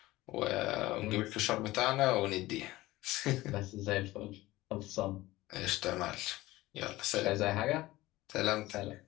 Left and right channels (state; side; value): quieter; right; 18.1 dB